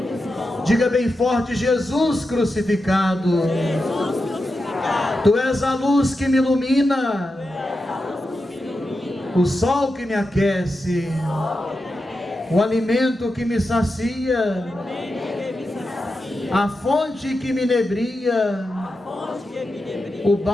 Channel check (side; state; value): both; normal; correlation 0.89